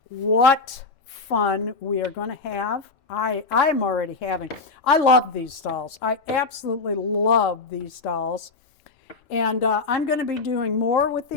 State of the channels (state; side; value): quieter; right; 4.0 dB